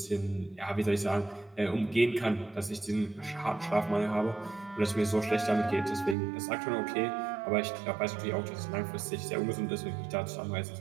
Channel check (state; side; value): drops out; left; at 6.2 s